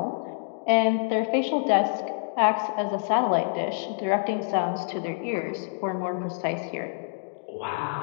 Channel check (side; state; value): right; silent; digital silence